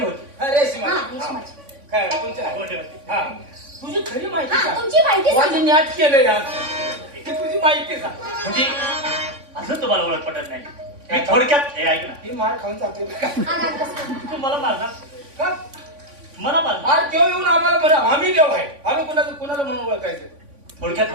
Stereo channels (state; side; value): late; left; 3.5 ms